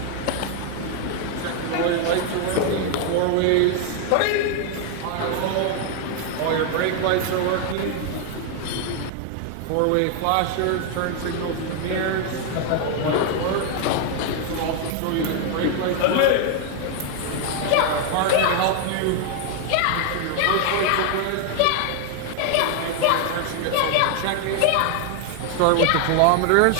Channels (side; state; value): both; different; correlation 0.00